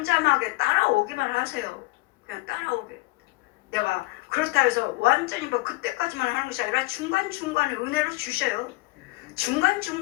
따라오기만 하세요. 그냥 따라오게. 내가 그렇다 해서 완전히 그때까지만 하는 것이 아니라 중간중간에 은혜를 주셔요.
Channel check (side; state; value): right; quieter; 22.2 dB